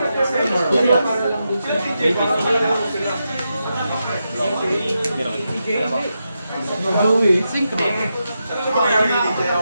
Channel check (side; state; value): both; inverted; correlation -0.87